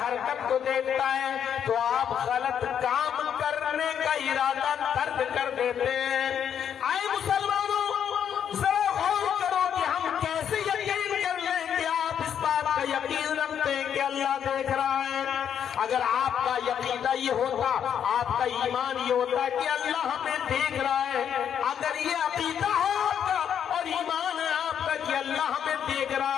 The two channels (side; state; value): right; quieter; 8.7 dB